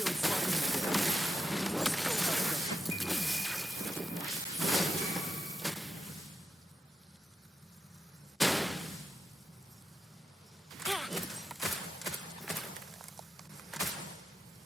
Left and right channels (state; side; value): normal; both; correlation 0.87